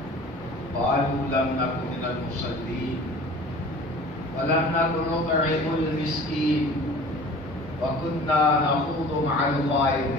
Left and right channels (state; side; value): normal; both; correlation 0.44